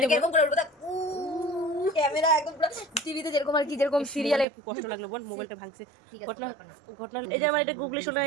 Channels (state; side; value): drops out; left; at 4.5 s